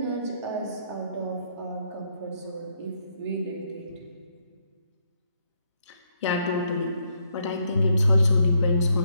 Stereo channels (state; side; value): inverted; both; correlation -0.75